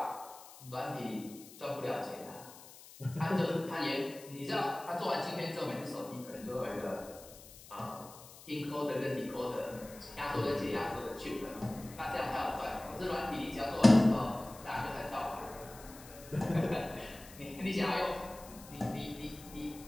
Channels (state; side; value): noise; left; hiss, 18 dB below the sound